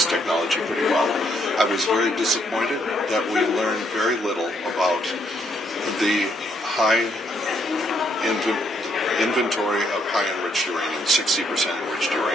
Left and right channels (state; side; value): normal; both; correlation 0.72